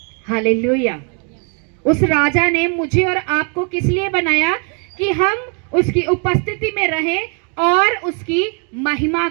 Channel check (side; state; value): left; quieter; 37.5 dB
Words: हालेलुया। उस राजा ने मुझे और आपको किस लिए बनाया, कि हम उसकी उपस्थिति में रहें और उसकी महिमा